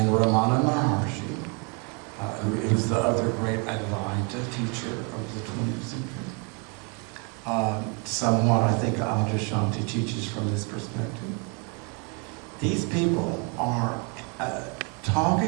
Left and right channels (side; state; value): left; quieter; 34.7 dB